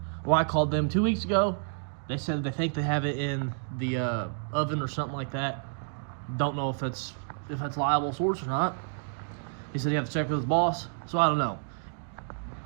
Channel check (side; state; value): left; silent; digital silence